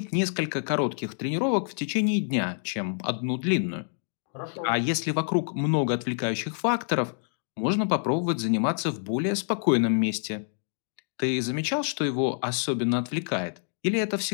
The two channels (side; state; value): right; silent; digital silence